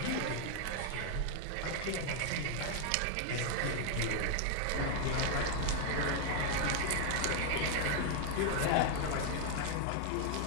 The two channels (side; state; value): both; different; correlation 0.00